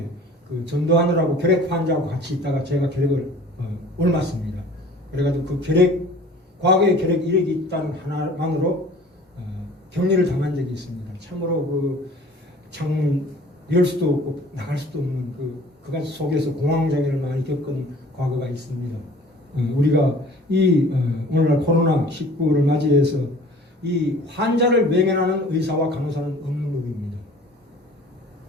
그 전도하느라고 결핵 환자하고 같이 있다가 제가 결핵을 옮았습니다. 그래가지고 그 과거에 결핵 이력이 있다는 하나만으로 격리를 당한 적이 있습니다. 참으로 창문 열 수도 없고 나갈 수도 없는 그가 속에서 공황장애를 많이 겪은 과거가 있습니다. 우리가 오늘날 코로나19를 맞이해서 이 환자를 외면하는 의사와 간호사는 없는 법입니다.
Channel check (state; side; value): normal; both; correlation 0.48